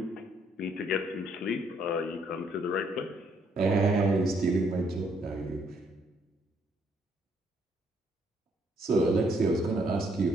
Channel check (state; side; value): normal; both; correlation 0.70